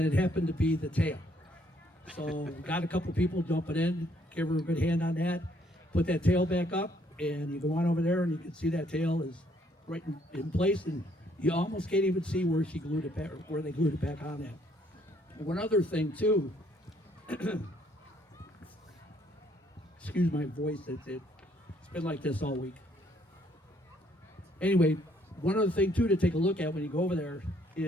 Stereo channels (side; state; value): both; normal; correlation 0.67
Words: it happened to be the tail. So we got a couple people jumping in, give her a good hand on that, put that tail back up, and you go on over there and you can see that tail is right in place, and you almost can't even see where she glued it back, or where they glued it back on at. One other thing too, excuse my voice, it's been like this all week. Anyway, one other thing too to take a look at when you go over there